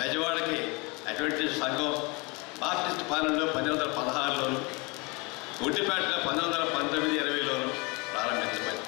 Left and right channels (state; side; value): quieter; right; 28.1 dB